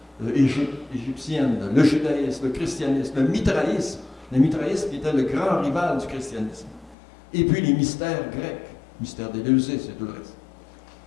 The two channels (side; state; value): right; drops out; at 7.0 s